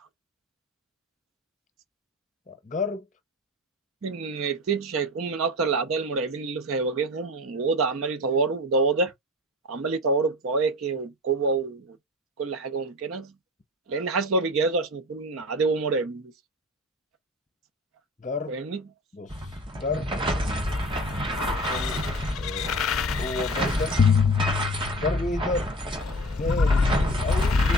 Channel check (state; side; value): normal; both; correlation 0.34